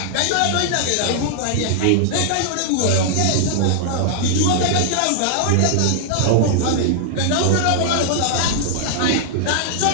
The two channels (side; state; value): both; different; correlation -0.01